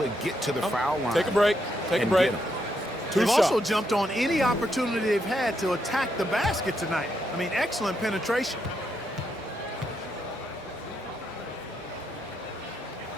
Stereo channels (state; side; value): normal; both; correlation 0.79